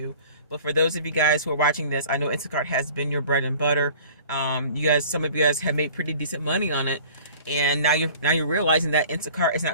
But for those of you guys who are watching this, I know Instacart has been your bread and butter. Some of you guys have made pretty decent money on it, and now you're realizing that Instacart is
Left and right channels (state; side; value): inverted; both; correlation -0.47